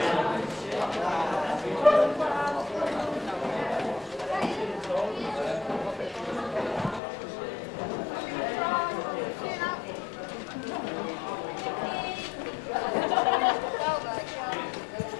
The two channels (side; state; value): right; drops out; at 7.0 s